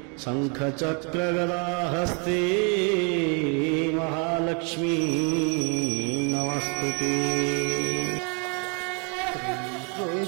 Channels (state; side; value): quieter; left; 36.0 dB